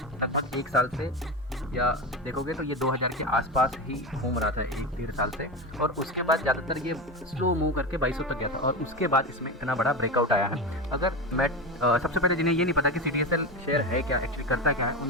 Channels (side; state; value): both; normal; correlation 0.20